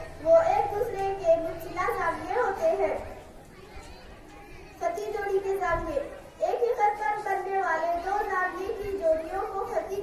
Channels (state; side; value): identical; both; correlation 1.00